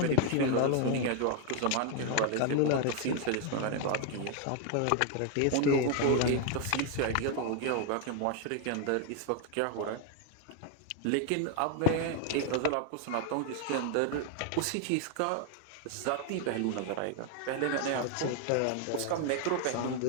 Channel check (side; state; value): both; different; correlation 0.01